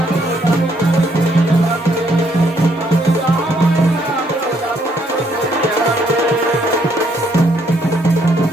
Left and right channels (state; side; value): normal; both; correlation 0.70